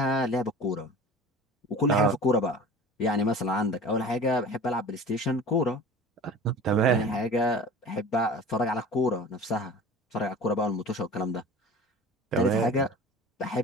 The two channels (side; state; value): both; normal; correlation 0.39